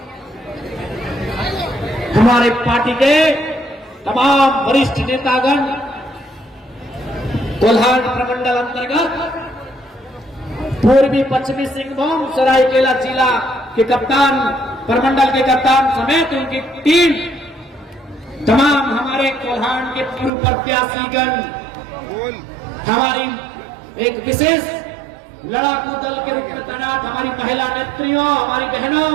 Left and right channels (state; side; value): drops out; left; at 20.3 s